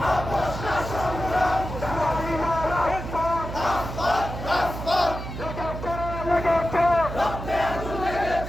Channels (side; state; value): right; noise; hum, 7 dB below the sound